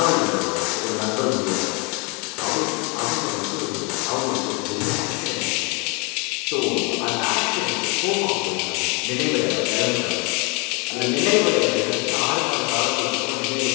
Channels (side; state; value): right; quieter; 30.9 dB